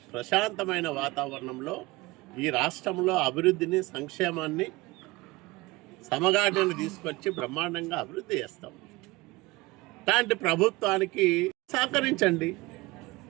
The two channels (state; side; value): quieter; left; 21.7 dB